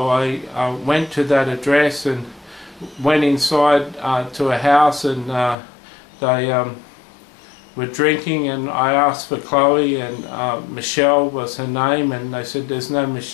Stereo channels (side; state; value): right; drops out; at 5.6 s